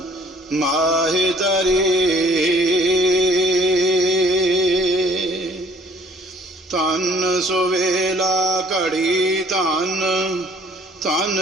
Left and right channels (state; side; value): normal; both; correlation 0.57